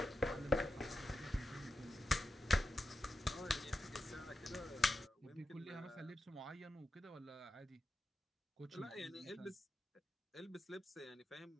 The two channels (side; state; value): both; normal; correlation 0.89